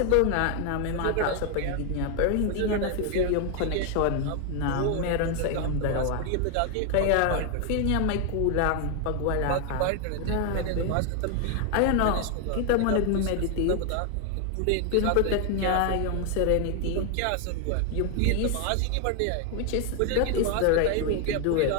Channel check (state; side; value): different; both; correlation 0.01